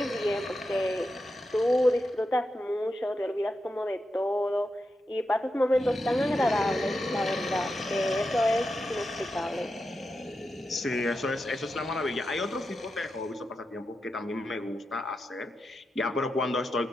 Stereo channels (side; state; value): both; normal; correlation 0.88